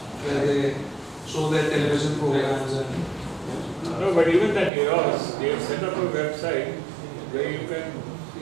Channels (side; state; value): left; drops out; at 4.7 s